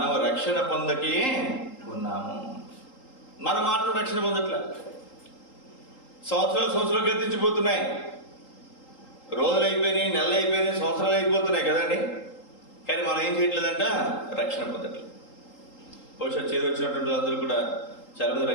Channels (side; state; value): right; late; 3.8 ms